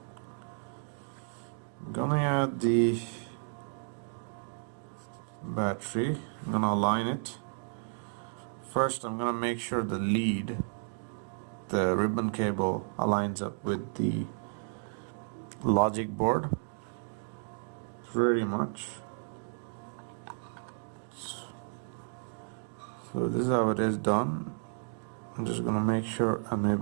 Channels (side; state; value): left; silent; digital silence